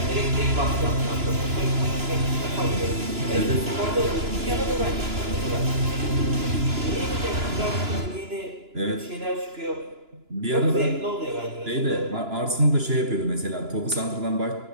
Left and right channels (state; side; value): late; left; 2.9 ms